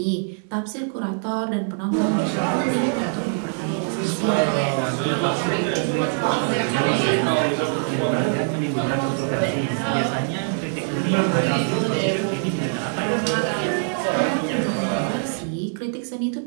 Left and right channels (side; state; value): left; silent; 63 dB below the other